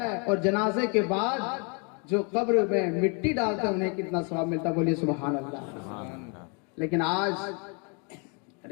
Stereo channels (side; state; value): right; quieter; 35.7 dB